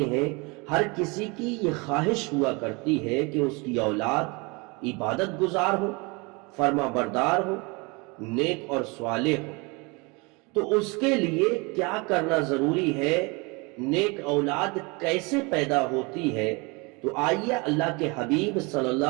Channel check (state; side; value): quieter; left; 28.2 dB